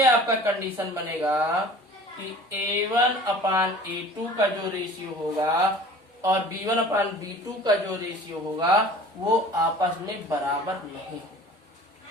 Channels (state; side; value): normal; both; correlation 0.45